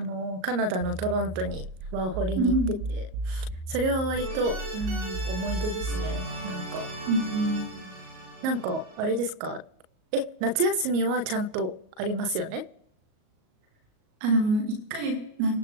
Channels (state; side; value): late; left; 38 ms